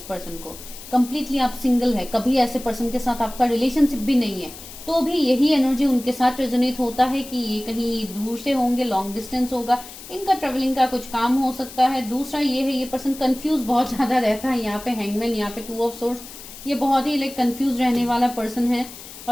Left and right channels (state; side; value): noise; left; hiss, 15 dB below the sound